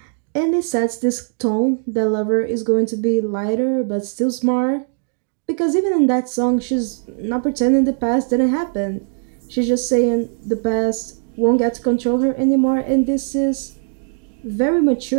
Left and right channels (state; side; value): silent; left; 61 dB below the other